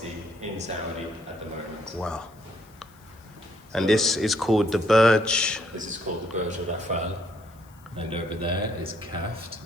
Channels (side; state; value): left; noise; hiss, 29 dB below the sound